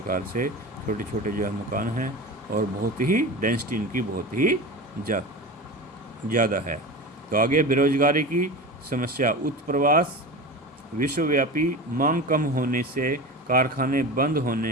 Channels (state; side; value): normal; both; correlation 0.29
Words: से छोटे छोटे जो है मकान हैं और बहुत ही डेंसिटी इनकी बहुत ही ज़्यादा है। तो आगे बेरोजगारी की समस्या, उत्प्रवास, विश्वव्यापी मांग कम होने से कारखाने बंद